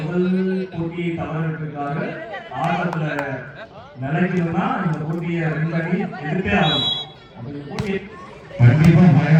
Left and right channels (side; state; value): both; identical; correlation 1.00